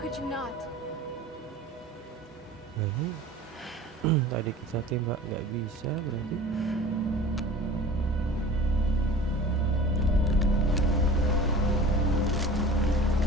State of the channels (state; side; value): normal; both; correlation 0.41